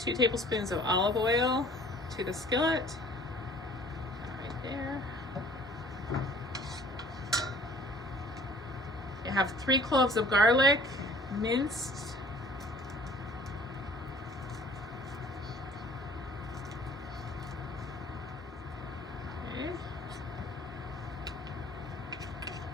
2 tablespoons of olive oil to the skillet. Right there. You have 3 cloves of garlic, minced.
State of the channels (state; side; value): normal; both; correlation 0.51